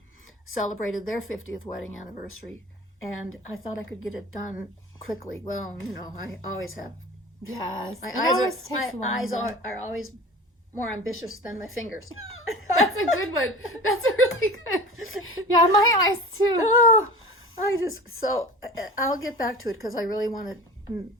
celebrated their 50th wedding anniversary. And I thought I could get it done quickly. Well, I always have. Yes. My eyes are always more ambitious than my fingers. That's a good one. That's a really good. Yeah, my eyes too. Oh, I'll get back to it because I really want to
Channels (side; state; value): both; normal; correlation 0.36